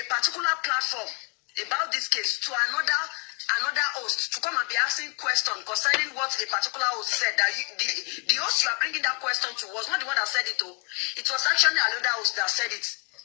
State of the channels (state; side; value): quieter; right; 35.7 dB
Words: particular platform about this case to another host to come and be asking questions concerning what a particular host said. That the host you are bringing that question to was not the one that said it, though. It was actually another host that said it.